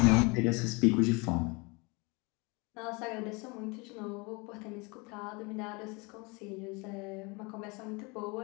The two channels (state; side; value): quieter; right; 28.2 dB